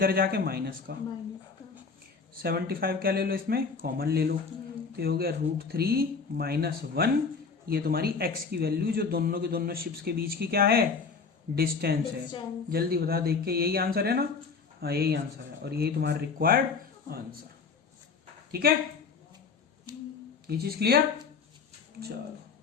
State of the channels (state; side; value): quieter; right; 5.1 dB